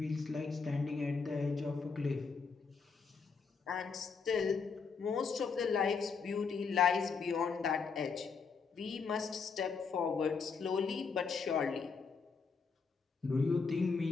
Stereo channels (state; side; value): quieter; right; 5.2 dB